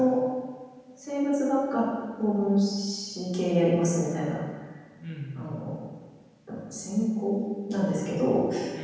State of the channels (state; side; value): identical; both; correlation 1.00